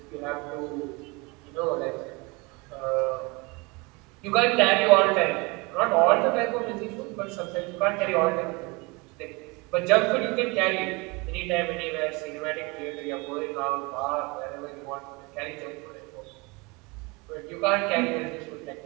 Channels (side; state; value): left; quieter; 26.9 dB